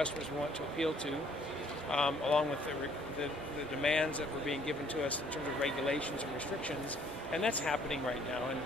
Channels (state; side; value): normal; both; correlation 0.61